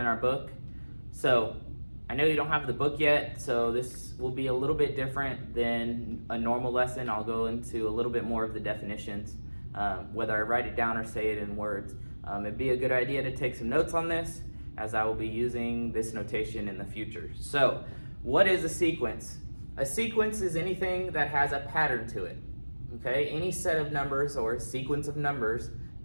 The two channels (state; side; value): inverted; both; correlation -1.00